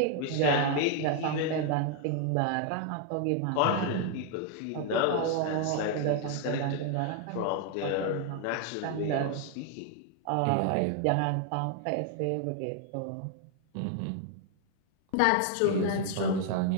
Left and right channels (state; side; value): different; both; correlation 0.00